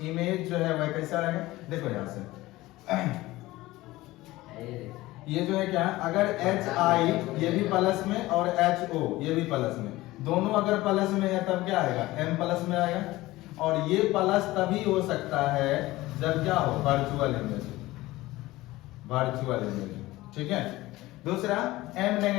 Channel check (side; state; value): right; quieter; 18.3 dB